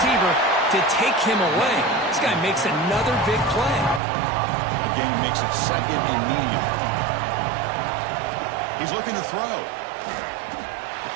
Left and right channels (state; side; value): drops out; left; at 4.0 s